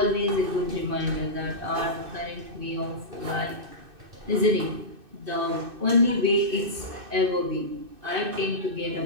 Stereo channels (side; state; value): left; late; 2.6 ms